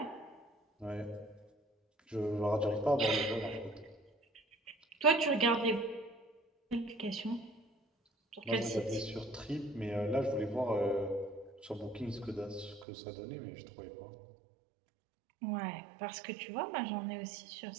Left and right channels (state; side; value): drops out; left; at 12.9 s